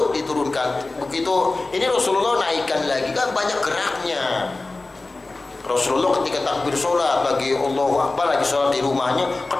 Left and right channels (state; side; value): quieter; right; 3.3 dB